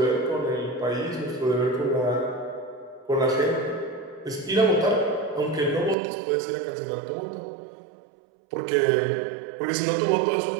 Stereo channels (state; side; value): drops out; left; at 6.0 s